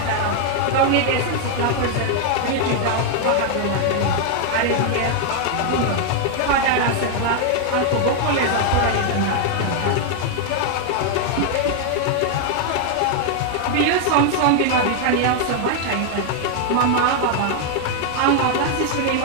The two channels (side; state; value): both; different; correlation 0.00